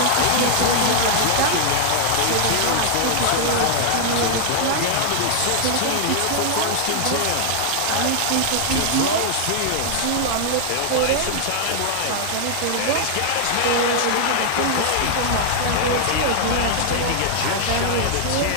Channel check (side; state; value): both; different; correlation 0.00